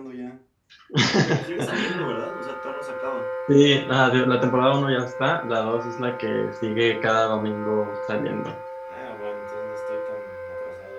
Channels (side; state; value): both; identical; correlation 1.00